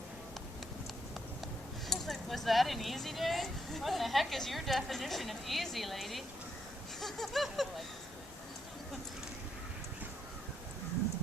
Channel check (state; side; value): normal; both; correlation 0.77